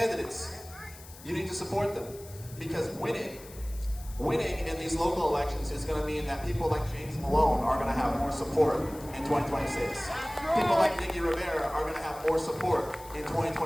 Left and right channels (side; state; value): left; noise; hiss, 19 dB below the sound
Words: You need to support them, because winning in these local elections is going to mean that people like James Malone are going to have more support in 2026. People like Nikki Rivera are going to have more support in